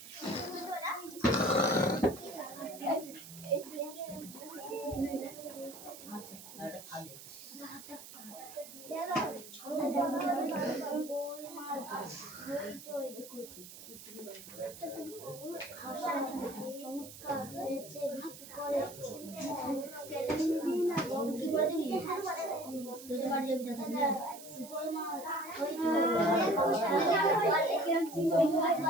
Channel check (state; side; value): noise; right; hiss, 15 dB below the sound